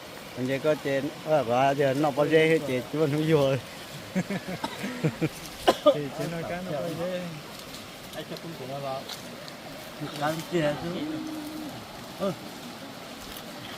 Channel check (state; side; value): identical; both; correlation 1.00